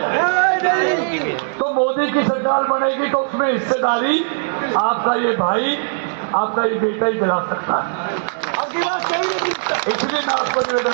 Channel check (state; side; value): silent; left; digital silence